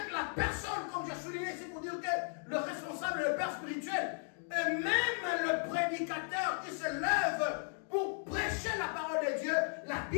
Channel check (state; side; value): silent; right; 54 dB below the other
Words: la personne, comme j'ai souligné ici pour dire que le responsable est le père spirituel, et même le prédicateur qui se lève pour prêcher la parole de Dieu, la